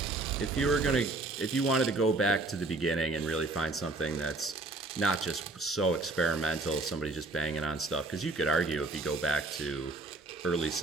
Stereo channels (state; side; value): quieter; left; 3.2 dB